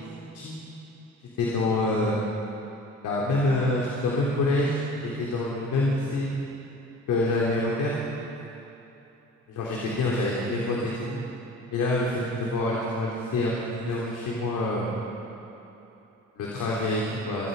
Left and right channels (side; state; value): both; normal; correlation 0.42